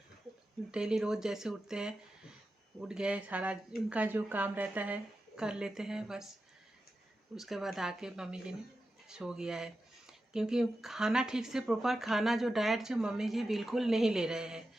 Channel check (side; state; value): both; normal; correlation 0.91